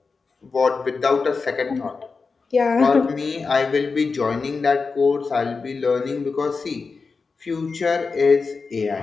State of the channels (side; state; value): right; quieter; 4.6 dB